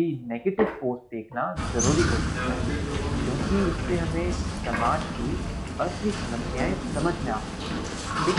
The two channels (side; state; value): both; identical; correlation 1.00